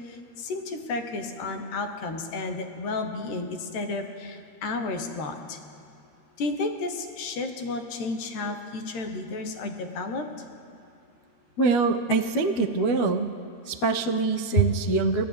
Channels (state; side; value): late; right; 13 ms